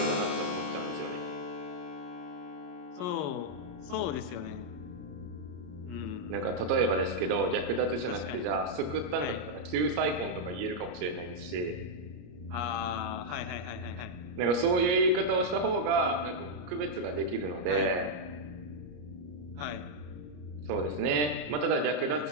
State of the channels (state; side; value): late; left; 34 ms